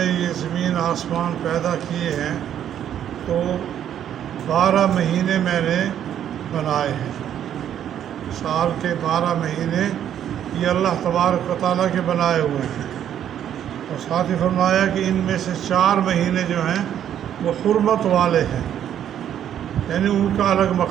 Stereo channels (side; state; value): left; quieter; 10.1 dB